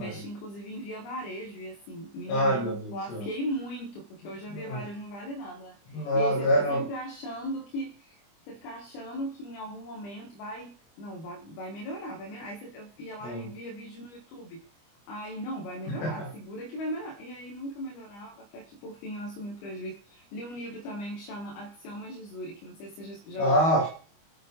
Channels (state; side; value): late; right; 25 ms